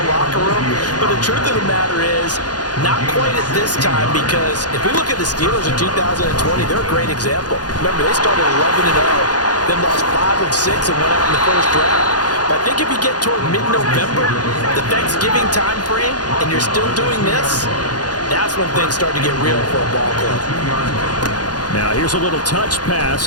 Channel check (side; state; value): right; late; 0.69 ms